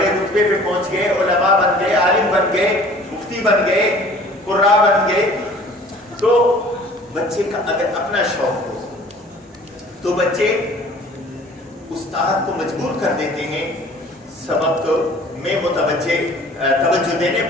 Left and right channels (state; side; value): normal; both; correlation 0.49